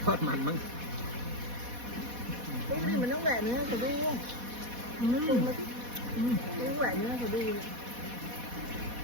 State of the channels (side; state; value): left; late; 4.1 ms